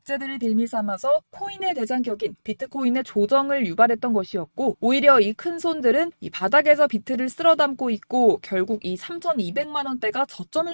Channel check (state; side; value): inverted; both; correlation -1.00